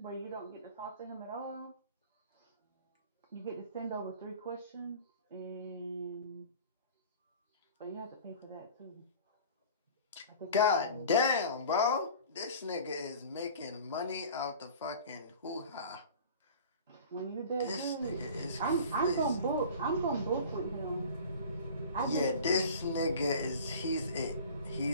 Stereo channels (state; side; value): inverted; both; correlation -0.42